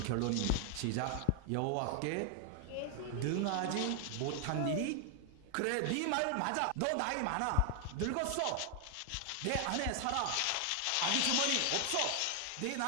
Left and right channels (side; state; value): both; different; correlation 0.00